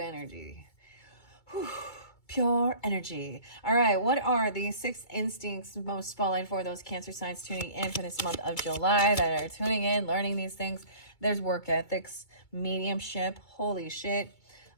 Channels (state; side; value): late; right; 2.3 ms